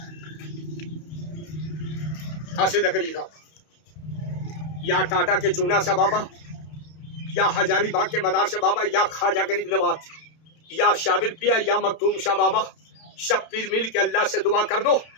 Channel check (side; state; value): right; late; 31 ms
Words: सीधा करिएगा। या टाटा के चूना सा बाबा, या हजारीबाग के मदार से बाबा, या ख्वाजा गरीब नवाज, या शाबिर पिया, या मखदूम शाह बाबा, सब पीर मिल के अल्लाह से दुआ कर दो,